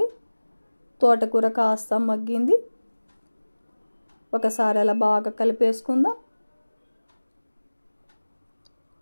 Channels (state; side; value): inverted; both; correlation -1.00